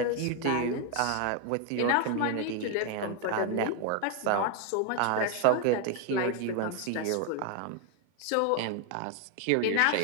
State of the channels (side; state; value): both; different; correlation 0.01